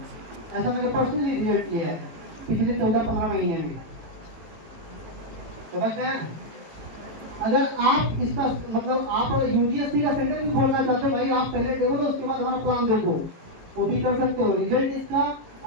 ऐसा मैंने पर्सनली रिजल्ट लिया है पिछले 14-15 महीने में। समझ गए? अगर आप इसका मतलब आप यूजीएससी का सेंटर भी खोलना चाहते हो, भाई आप पहले देखो तो उसके बाद हमारा प्लान देखो, वो भी कर सकते हो। रिजल्ट इसका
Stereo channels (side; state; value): left; late; 18 ms